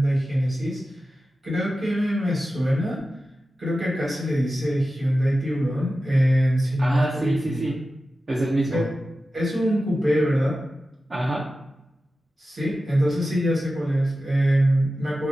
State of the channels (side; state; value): both; normal; correlation 0.94